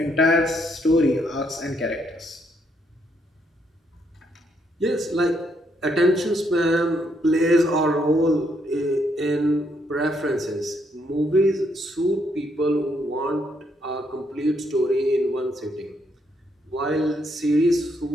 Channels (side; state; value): both; normal; correlation 0.74